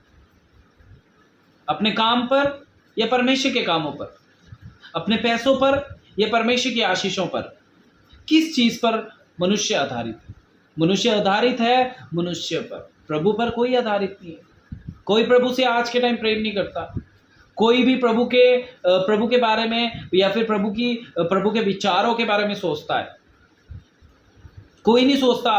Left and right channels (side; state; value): both; identical; correlation 1.00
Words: अपने काम पर या परमेश्वर के कामों पर? अपने पैसों पर या परमेश्वर की आशीषों पर? किस चीज पर मनुष्य आधारित है? मनुष्य आधारित है मनुष्य पर, प्रभु पर कोई आधारित नहीं है। कोई प्रभु से आज के टाइम प्रेम नहीं करता। कोई भी प्रभु के बारे में या फिर प्रभु के विचारों के बारे में सोचता है? कोई नहीं सोचता